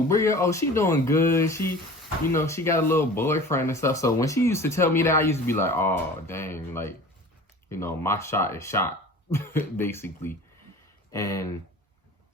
Bria? Oh, she doing good. She, she got a little boyfriend and stuff. So when she used to tell me that, I used to be like, oh, dang, like, my shot is shot, basically. And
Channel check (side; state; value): both; normal; correlation 0.41